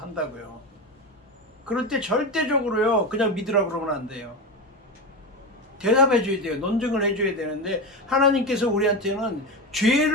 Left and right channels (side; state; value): both; normal; correlation 0.18